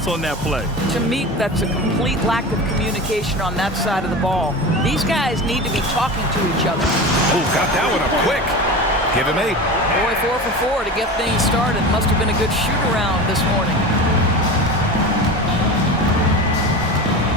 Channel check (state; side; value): normal; both; correlation 0.30